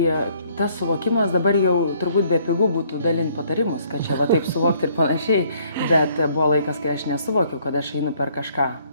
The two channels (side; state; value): both; inverted; correlation -0.63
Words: tas suvokimas dabar jau turbūt be pigų būtų dalinti patarimus, kad čia taip suvokti ir panašiai, bet buvo laikas, kai aš nesuvokiau, kad aš einu per kažką,